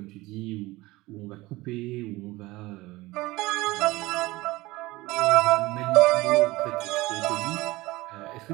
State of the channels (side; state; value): left; quieter; 20.1 dB